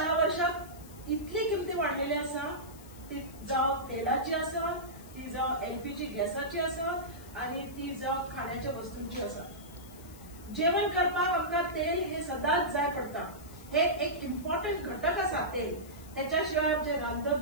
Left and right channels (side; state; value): left; noise; hiss, 21 dB below the sound